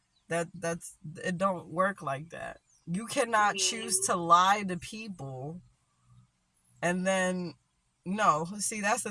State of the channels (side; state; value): both; identical; correlation 1.00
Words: That's it don't work like that. You cannot choose Mm. to lie to people and then no, see that's the